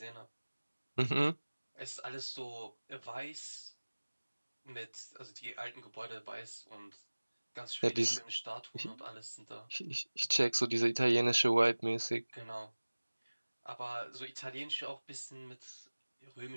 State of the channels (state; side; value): inverted; both; correlation -1.00